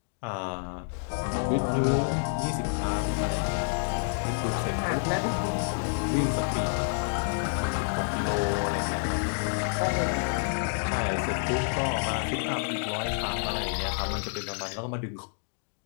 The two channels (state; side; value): silent; right; digital silence